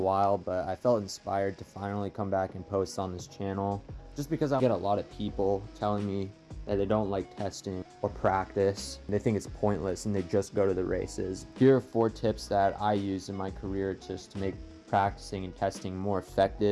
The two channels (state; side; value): identical; both; correlation 1.00